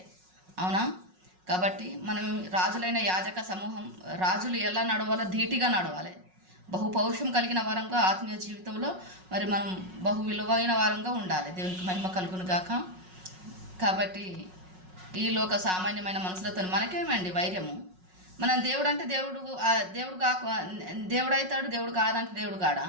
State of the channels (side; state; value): left; late; 5.4 ms